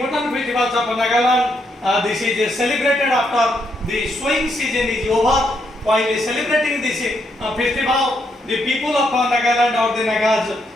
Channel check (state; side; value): normal; both; correlation 0.77